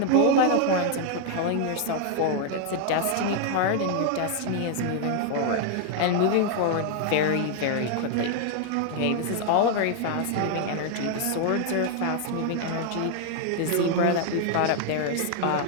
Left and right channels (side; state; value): both; different; correlation 0.00